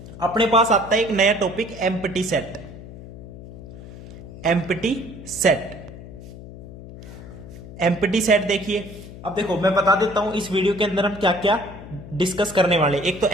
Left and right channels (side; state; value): left; noise; hum, 15 dB below the sound